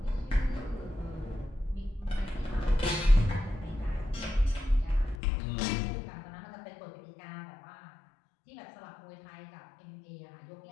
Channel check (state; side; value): drops out; right; at 5.2 s